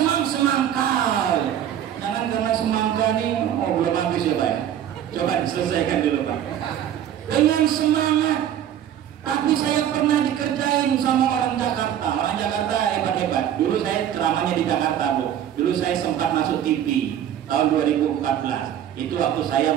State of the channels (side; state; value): left; quieter; 10.4 dB